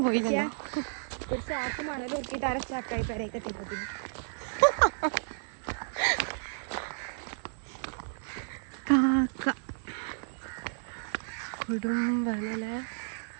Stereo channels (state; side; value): silent; left; 56 dB below the other